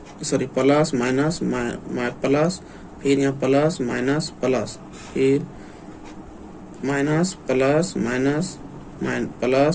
माइनस प्लस, फिर यहाँ प्लस माइनस प्लस, फिर minus plus minus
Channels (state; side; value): identical; both; correlation 1.00